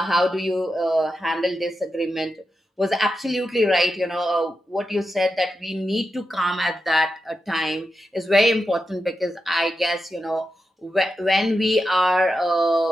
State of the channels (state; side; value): normal; both; correlation 0.88